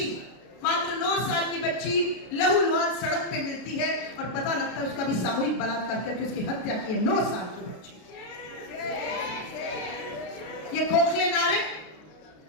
बच्ची लहूलुहान सड़क पे मिलती है और पता लगता है उसका भी सामूहिक बलात्कार करके उसकी हत्या की है। 9 साल की बच्ची। ये खोखले नारे,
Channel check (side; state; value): right; late; 33 ms